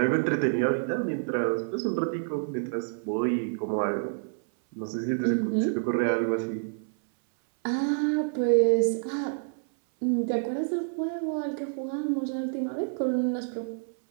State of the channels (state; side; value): silent; left; 59 dB below the other